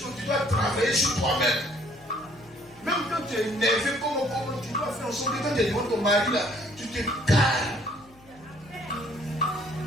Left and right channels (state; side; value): noise; left; hum, 26 dB below the sound